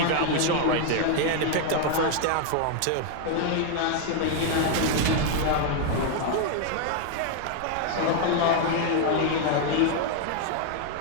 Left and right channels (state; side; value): different; both; correlation 0.00